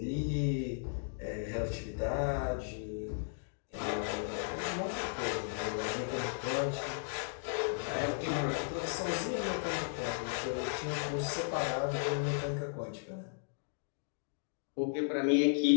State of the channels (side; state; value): right; silent; digital silence